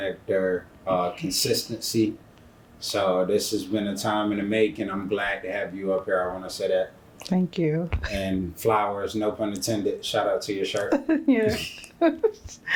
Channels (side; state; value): both; identical; correlation 1.00